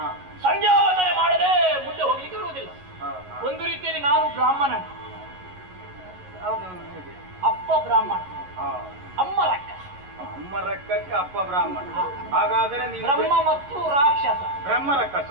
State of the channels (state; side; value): late; left; 11 ms